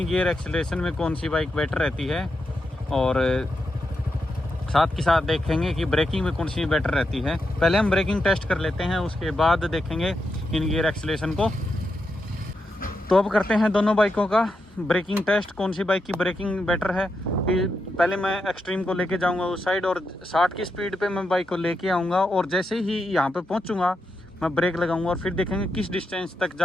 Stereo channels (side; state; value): both; normal; correlation 0.85